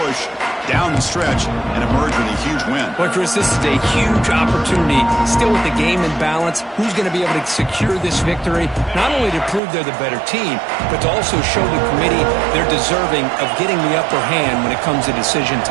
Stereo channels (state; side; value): drops out; left; at 9.6 s